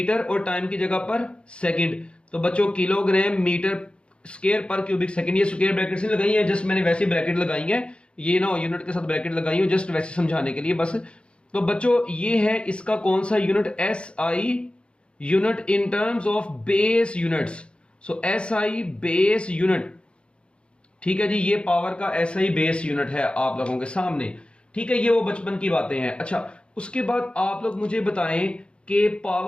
और टाइम की जगह पर सेकंड। तो बच्चों किलोग्राम मीटर स्क्वायर पर क्यूबिक सेकंड। ये स्क्वायर ब्रैकेट से लगाई है, जस्ट मैंने वैसी ब्रैकेट लगाई है, ये ना यूनिट के साथ ब्रैकेट लगाई हो, जस्ट वैसे समझाने के लिए बस। तो बच्चों ये है इसका कौन सा unit? SI unit in terms of base units. So SI base unit, ठीक है जी। ये पावर का एसआई बेस यूनिट है आप लोगों के सामने, ठीक है। ये वो बचपन की बातें हैं। अच्छा, उसके बाद आप लोग मुझे बताएं कि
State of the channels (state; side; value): late; right; 0.057 ms